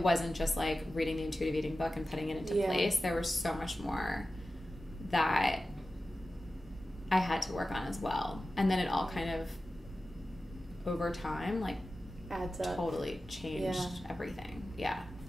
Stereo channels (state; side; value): normal; both; correlation 0.94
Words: just like reading the intuitive eating book and putting it into place. There was so much more that I had to work on as well. And then it all kind of, over time, like, adds up. Totally changed everything. Yeah.